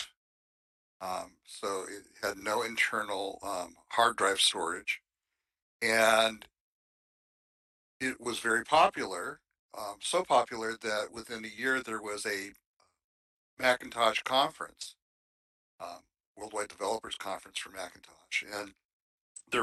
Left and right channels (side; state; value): both; identical; correlation 1.00